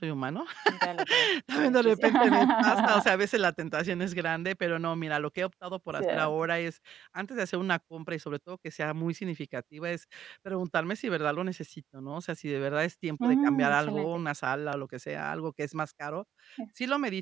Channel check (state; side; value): quieter; left; 9.9 dB